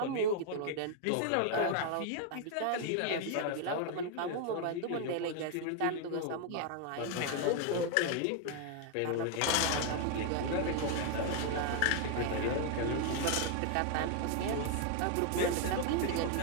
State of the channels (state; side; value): different; both; correlation 0.00